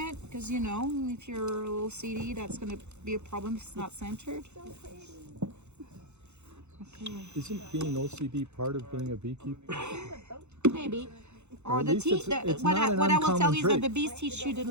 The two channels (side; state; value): left; late; 0.82 ms